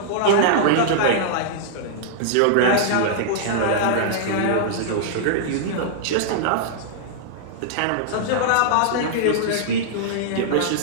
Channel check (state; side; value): different; both; correlation -0.01